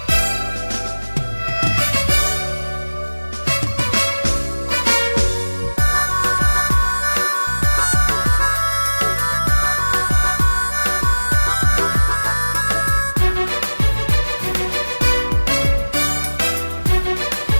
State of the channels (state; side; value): inverted; both; correlation -1.00